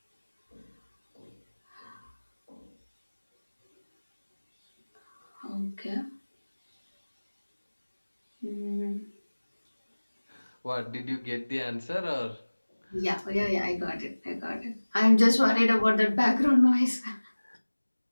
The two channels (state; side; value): inverted; both; correlation -1.00